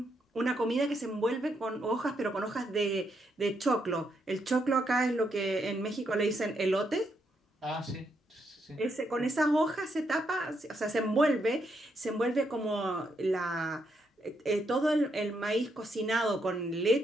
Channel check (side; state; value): both; normal; correlation 0.78